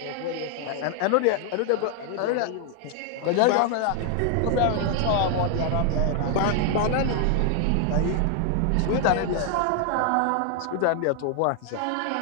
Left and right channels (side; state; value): both; different; correlation 0.00